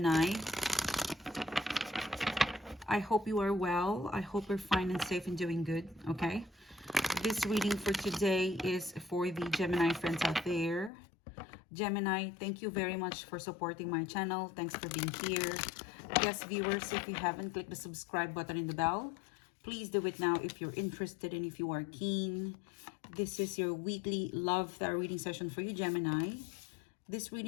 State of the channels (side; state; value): right; drops out; at 10.9 s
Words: I hope you are well. I hope you're fine and safe and doing good, okay? This reading for today is for the Gemini friends out there. Gemini, thank you very much for supporting my channel. Thanks for being here. Yes, viewers, if you haven't clicked the subscribe button and the bell, please do it now if you're interested and if you are keen. This is your weekly love tarot reading session for you, Gemini. This